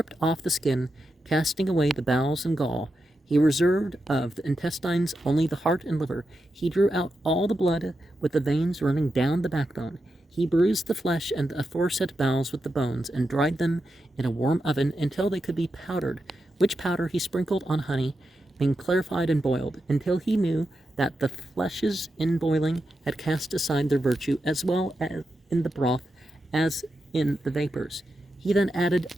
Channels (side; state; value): both; normal; correlation 0.88